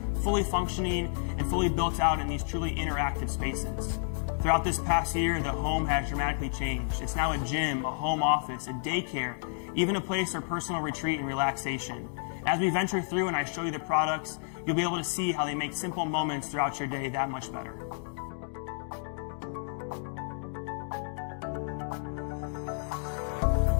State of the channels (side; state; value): right; silent; digital silence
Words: fully functioning and fully built out in these truly interactive spaces. Throughout this past year, the home has dramatically changed. It's now a gym, a home office, a daycare, even a place for personal retreat and relaxation. As we venture through and I show you the products, you'll be able to see how they make simple moments throughout your day that much better.